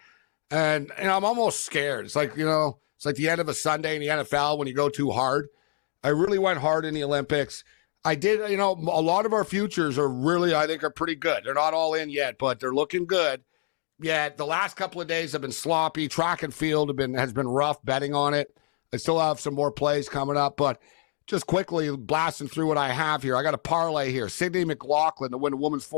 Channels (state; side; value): silent; right; 61 dB below the other